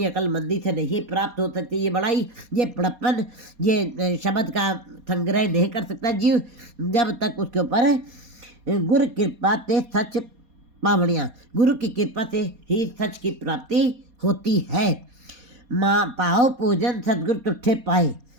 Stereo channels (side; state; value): left; late; 4.2 ms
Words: अकलमंदी से नहीं प्राप्त हो सकती ये बड़ाई, ये बड़प्पन, ये शब्द का संग्रह नहीं कर सकता जीव जब तक उसके ऊपर गुरु कृपा ते सच पावड़ियाँ, गुरु की कृपा से ही सच की प्राप्ति होती है। माँ पाओ पूजन सतगुरु तुठे पाए,